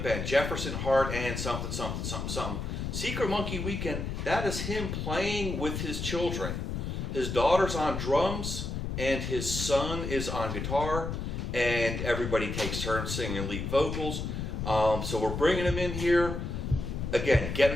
band, Jefferson Hart and something. Secret Monkey Weekend, that is him playing with his children. His daughter's on drums and his son is on guitar, and everybody takes turns singing lead vocals. So we're bringing him in here. Again,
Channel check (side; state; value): left; noise; rumble, 4 dB below the sound